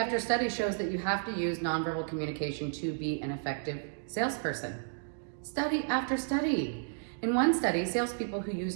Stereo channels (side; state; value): left; silent; digital silence